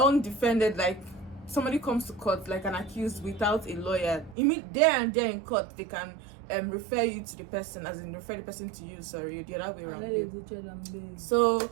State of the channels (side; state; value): left; drops out; at 4.4 s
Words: like somebody comes to court like an accused without a lawyer, there and there in court they can refer you to the person, as in refer the person to you. Sorry, the other way around. So